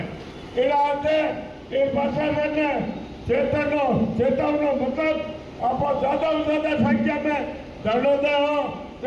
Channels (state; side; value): identical; both; correlation 1.00